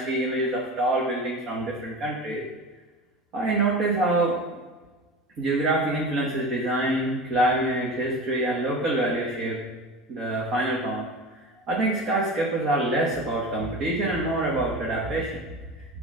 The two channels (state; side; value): normal; both; correlation 0.31